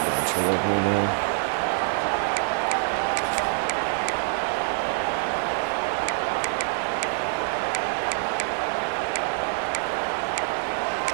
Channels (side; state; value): left; silent; 61 dB below the other